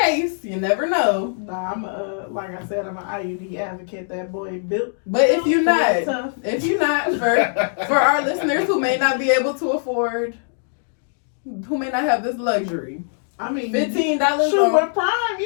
You never know. Nah, I'm like I said, I'm an IUD advocate. That boy built. But if you're not, tough. for our listeners who may not be able to afford, who may not have this luxury, I mean, $15 shoot, on with Prime,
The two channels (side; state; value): right; silent; digital silence